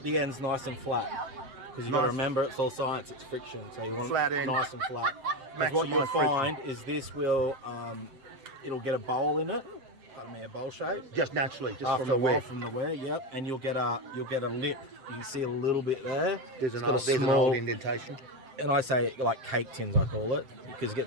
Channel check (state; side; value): late; left; 7.7 ms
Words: the ends nice and flat, because you got to remember it's all science. It's friction, so you want Flat it end. nice and flat. 'Cause what you'll Maximise friction. find is this will it'll get a bowl in it. I mean, a bowl shape. Just naturally, just After from the a while, wear. from the wear, yep. And you'll get a lip. You can see a little bit there. There's It's an got a old small- indentation. And I say like cake tins, I call it, because it